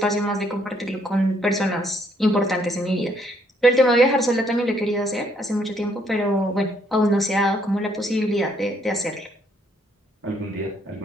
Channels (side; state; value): both; normal; correlation 0.69